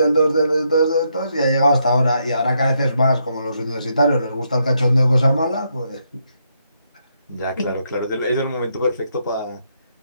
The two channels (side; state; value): both; inverted; correlation -0.78